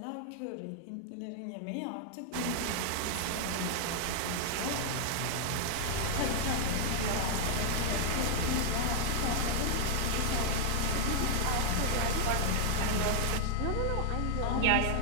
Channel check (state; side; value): different; both; correlation 0.00